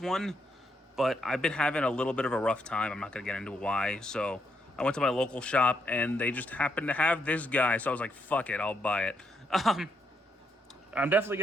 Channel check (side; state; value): both; normal; correlation 0.78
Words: but I've been having a little bit of a rough time. I'm not gonna get into why. So I went to my local shop, and they just happened to have this guy, so I was like, fuck it, I'll buy it. I'm definitely